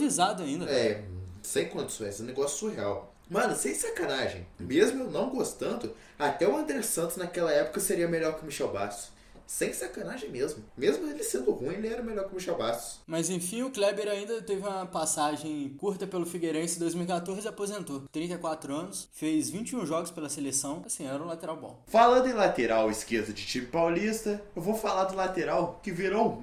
ainda. Sem condições, é um negócio surreal. Mano, sem sacanagem. Mesmo eu não gostando, até o André Santos naquela época seria melhor que o Michel Bastos. Sem sacanagem mesmo. Mesmo ele sendo ruim, ele era melhor que o Michel Bastos. Mas enfim, o Kleber ainda teve uma passagem curta pelo Figueirense em 2014 e aposentou. 34 anos, fez 21 jogos pela seleção, assim, era um lateral bom. Falando em lateral esquerdo de time paulista, eu vou falar do lateral que virou um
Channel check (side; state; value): both; identical; correlation 1.00